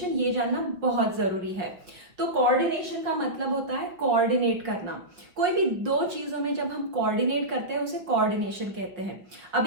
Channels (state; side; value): late; left; 5.4 ms